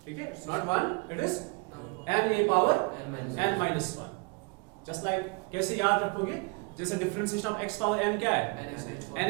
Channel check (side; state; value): left; quieter; 31.4 dB